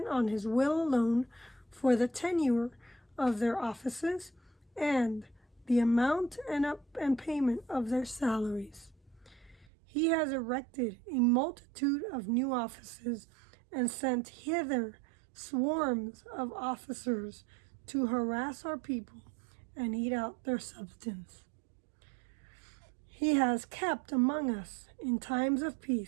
on his will alone for the tenure of their offices and the amount and payment of their salaries. He has erected a multitude of new offices and sent hither swarms of officers to harass our people and eat out their substance. He has kept among us in times of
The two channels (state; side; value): drops out; left; at 9.7 s